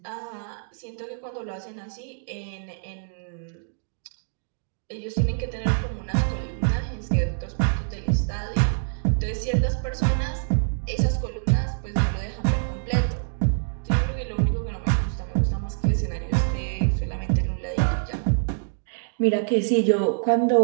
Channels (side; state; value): left; silent; digital silence